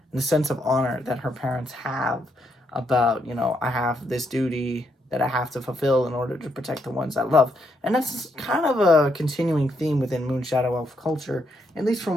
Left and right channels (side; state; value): both; normal; correlation 0.76